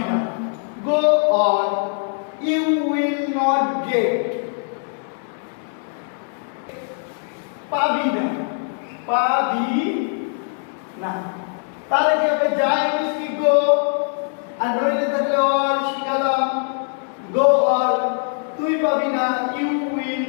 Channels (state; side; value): silent; right; 56 dB below the other